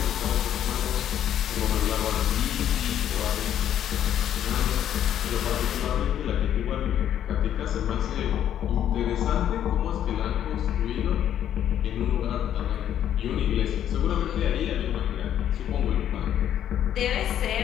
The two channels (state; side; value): quieter; right; 10.5 dB